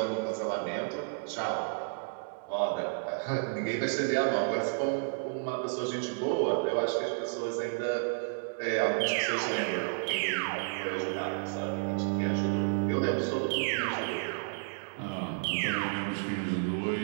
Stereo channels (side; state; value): left; silent; digital silence